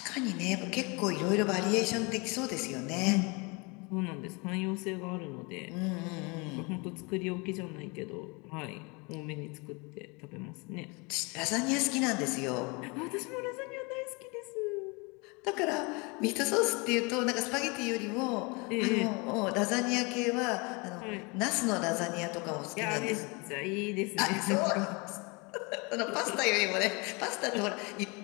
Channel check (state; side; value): quieter; right; 28.9 dB